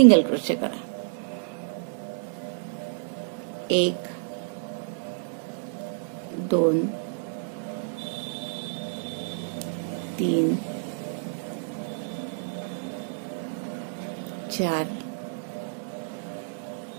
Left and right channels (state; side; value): silent; left; digital silence